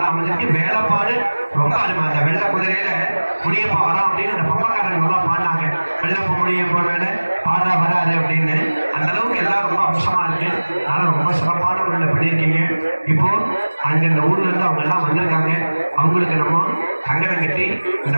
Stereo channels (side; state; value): both; inverted; correlation -1.00